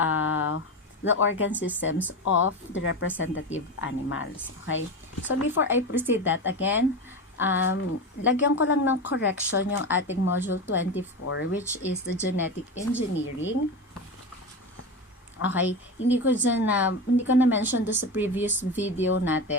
the organ systems of the representative animals. Okay? So before I proceed that, again, lagyan ko lang ng correction yung ating module 24, which is the genetic engineering. Okay, hindi ko na mention do sa previous video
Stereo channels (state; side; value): normal; both; correlation 0.22